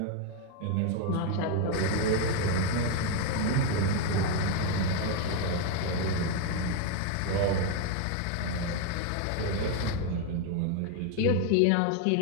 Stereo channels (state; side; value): different; both; correlation 0.01